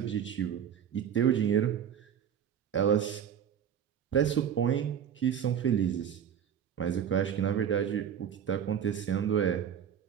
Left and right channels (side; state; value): left; quieter; 8.8 dB